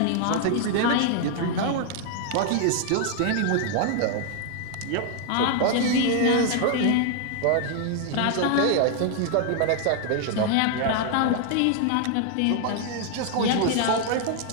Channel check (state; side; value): different; both; correlation 0.00